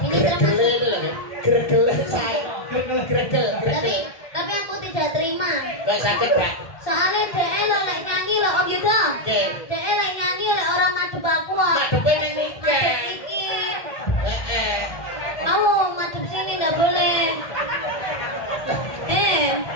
Gregel saya. Tapi aku tidak terima. Gak sakit, Pak. Soalnya DE lo lek nyanyi lo Om Yudo. Nggih. DE lek nyanyi lek orang madhep aku kok. Ngadepe ning Madhep nikah. iki. Heeh. Kamu madhep sini enggak boleh.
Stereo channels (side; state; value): right; late; 1.2 ms